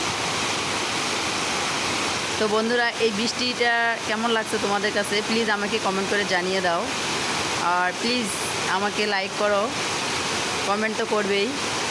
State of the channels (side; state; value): both; identical; correlation 1.00